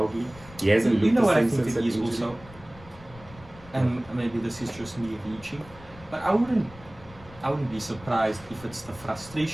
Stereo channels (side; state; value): left; noise; rumble, 20 dB below the sound